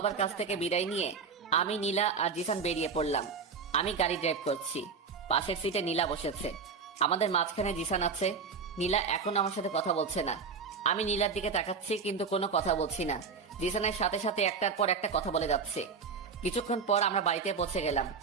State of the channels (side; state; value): left; quieter; 5.4 dB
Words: কাছ থেকে বিদায় নিয়ে আমি, নীলা আর জিসান বেরিয়ে পড়লাম। আমি গাড়ি ড্রাইভ করছি। পাশের সিটে নীলা বসেছে। আমাদের মাঝখানে জিসান আছে। নীলা এখন আমার সাথে কথা বলছে না। আমি নীলার দিকে তাকাচ্ছি কিন্তু কোনো কথা বলছি না। জিসানের সাথে সাথে একটার পর একটা কথা বলে যাচ্ছে। কিছুক্ষণ পর আমরা বাড়িতে পৌঁছে গেলাম।